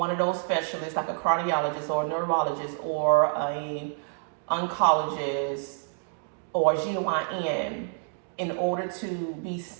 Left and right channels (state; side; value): silent; left; digital silence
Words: of those specialists, like a cardiologist or a neurologist or a oncologist or GYN, in order to be